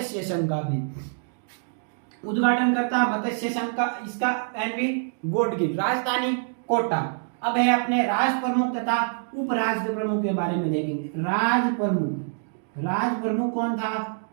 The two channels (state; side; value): silent; left; digital silence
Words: संघ का भी उद्घाटन करता मत्स्य संघ का इसका एनवी गॉडगिल। राजधानी कोटा। अब है अपने राज प्रमुख तथा उप राज प्रमुख के बारे में देखेंगे। राज प्रमुख कौन था?